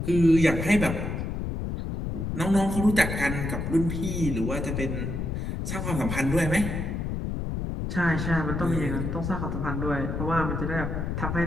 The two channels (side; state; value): left; noise; rumble, 3 dB below the sound